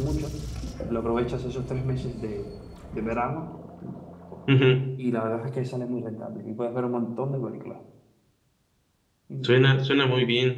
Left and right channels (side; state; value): both; identical; correlation 1.00